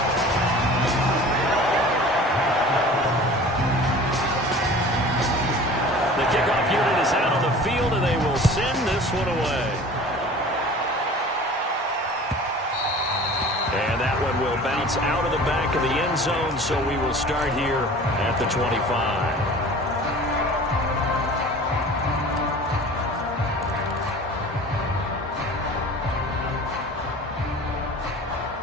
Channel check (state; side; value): normal; both; correlation 0.42